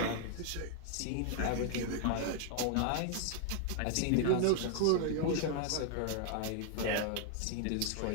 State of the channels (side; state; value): both; different; correlation 0.00